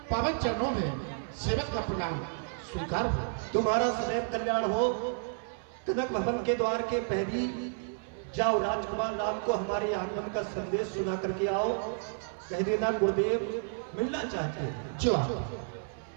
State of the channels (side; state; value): left; silent; 57 dB below the other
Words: पावन चरणों में सेवक का प्रणाम स्वीकार हो। तुम्हारा सदैव कल्याण हो। कनक भवन के द्वार के पहली जाओ, राजकुमार राम को हमारे आगमन का संदेश सुना करके आओ। कह देना गुरुदेव मिलना चाहते हैं। जो